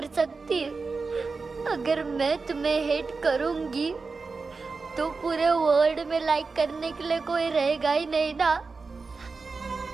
सकती। अगर मैं तुम्हें हेट करूंगी तो पूरे वर्ल्ड में लाइक करने के लिए कोई रहेगा ही नहीं ना।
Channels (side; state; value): left; quieter; 4.3 dB